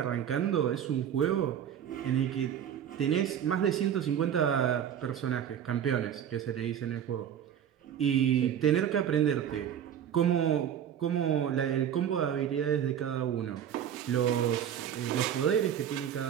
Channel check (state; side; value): quieter; left; 9.3 dB